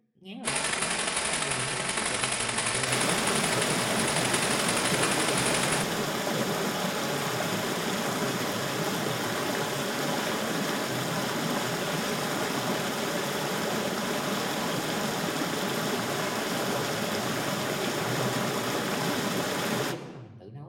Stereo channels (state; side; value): identical; both; correlation 1.00